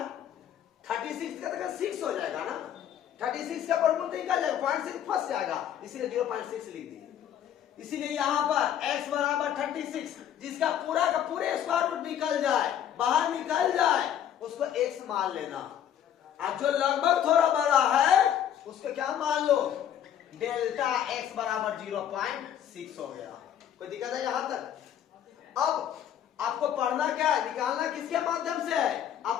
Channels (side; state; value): right; quieter; 10.0 dB